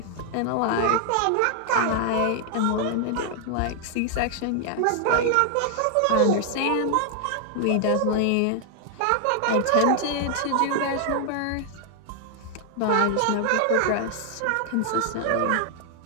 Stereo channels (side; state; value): both; different; correlation 0.00